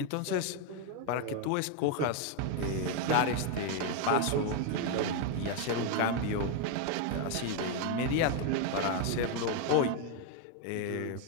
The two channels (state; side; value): different; both; correlation 0.01